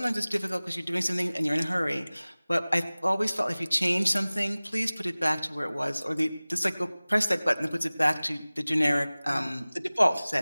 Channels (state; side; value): inverted; both; correlation -0.99